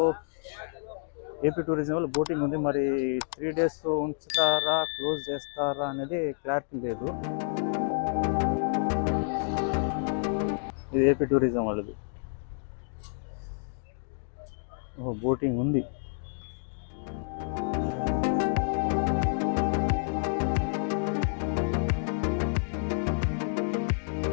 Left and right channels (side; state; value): right; silent; digital silence